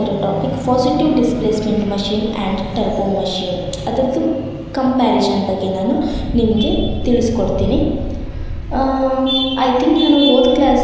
topic positive displacement machine and turbo machine. ಅದರದ್ದು comparison ಬಗ್ಗೆ ನಾನು ನಿಮಗೆ ತಿಳಿಸ್ಕೊಡ್ತೀನಿ. ಐ ಥಿಂಕ್ ನಾನು ಹೋದ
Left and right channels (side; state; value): both; identical; correlation 1.00